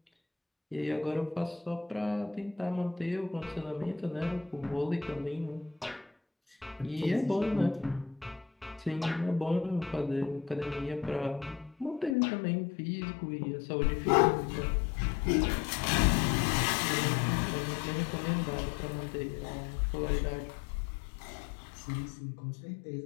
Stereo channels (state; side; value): drops out; right; at 12.2 s